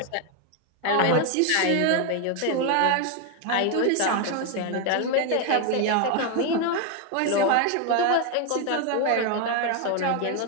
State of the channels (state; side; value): different; both; correlation 0.01